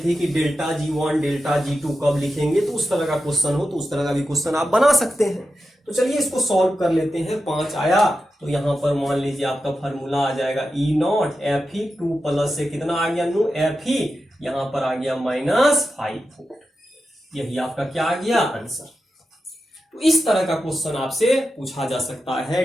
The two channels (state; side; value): normal; both; correlation 0.90